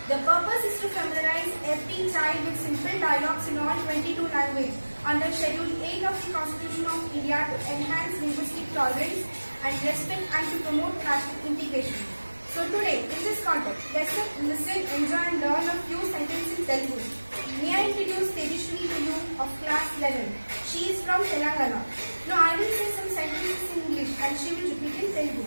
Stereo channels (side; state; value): both; inverted; correlation -1.00